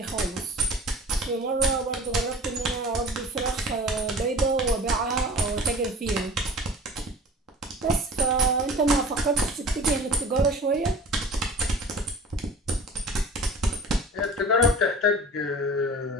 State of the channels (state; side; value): normal; both; correlation 0.42